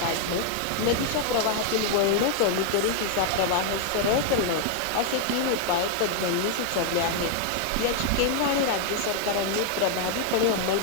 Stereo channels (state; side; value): different; both; correlation 0.00